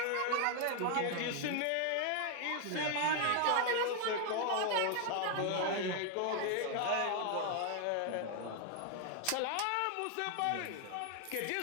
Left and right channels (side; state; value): both; different; correlation 0.01